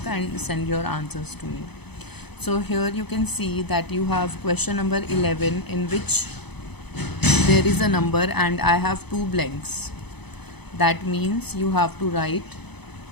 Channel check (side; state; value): right; late; 0.98 ms